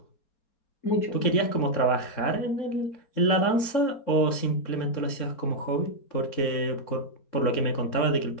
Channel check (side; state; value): right; late; 4.3 ms